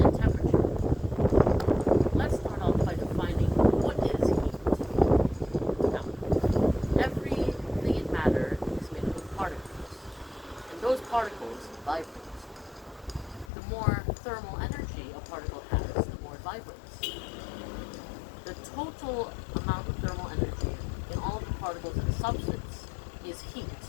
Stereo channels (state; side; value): drops out; right; at 13.5 s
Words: temperature. Let's start off by defining what is heat. Now, everything in matter is made up of particles, and those particles vibrate. The more thermal energy a particle has, the more it vibrates. The total amount of thermal energy in all of the particles in a substance is heat.